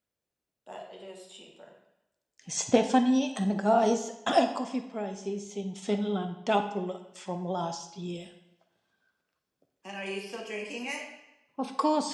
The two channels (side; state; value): both; identical; correlation 1.00